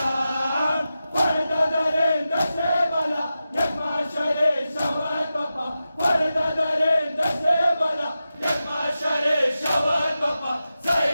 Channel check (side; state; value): both; inverted; correlation -0.92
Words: पर्दा दरिंद से बला यकमा शरे शवत बपा पर्दा दरिंद से बला यकमा शरे शवत बपा